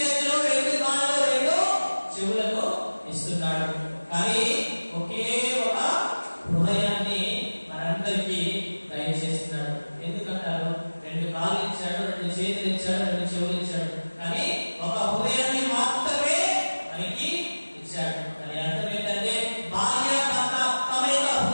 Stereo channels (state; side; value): inverted; both; correlation -1.00